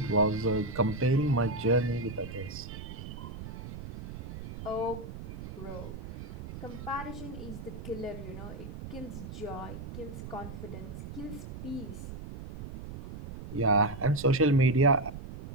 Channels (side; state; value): right; noise; rumble, 10 dB below the sound